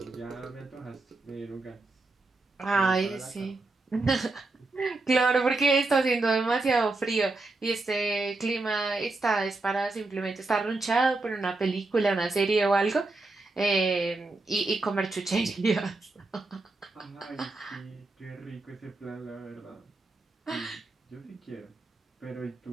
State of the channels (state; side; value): quieter; left; 3.2 dB